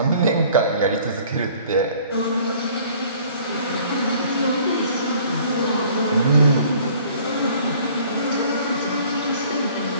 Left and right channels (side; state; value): both; inverted; correlation -0.54